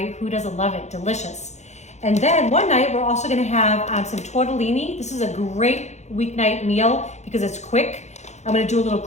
Who doesn't love it? Delicious. And then one night, we're also gonna have some tortellini. This is a great weeknight meal because it's quick. I'm gonna do a little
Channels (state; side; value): late; right; 0.33 ms